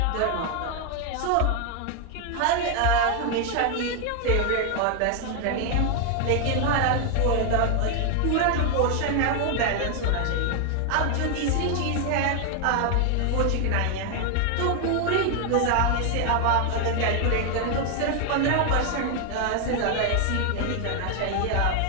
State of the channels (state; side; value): different; both; correlation 0.00